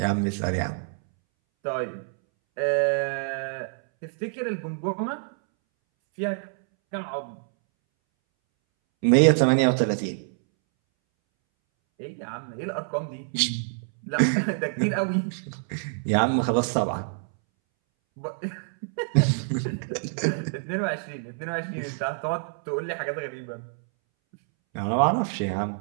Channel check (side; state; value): left; silent; 61 dB below the other